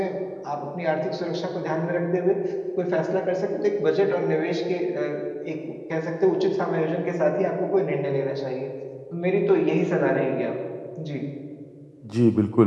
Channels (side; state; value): both; identical; correlation 1.00